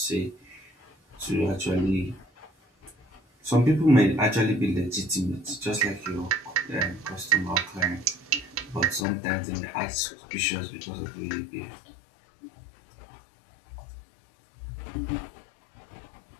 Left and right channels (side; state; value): right; drops out; at 9.1 s